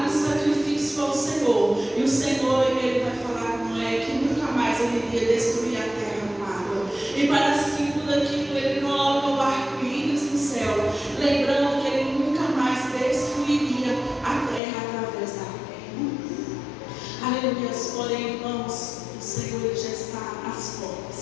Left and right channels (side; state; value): right; drops out; at 14.6 s